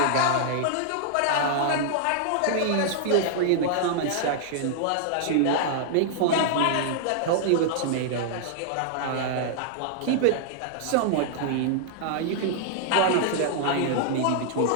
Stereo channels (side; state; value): both; different; correlation -0.01